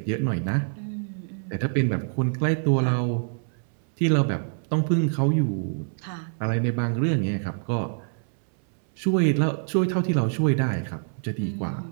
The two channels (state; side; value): silent; left; 61 dB below the other